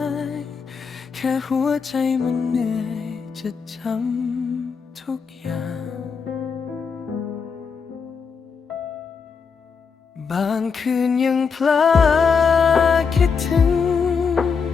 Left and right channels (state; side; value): quieter; right; 5.7 dB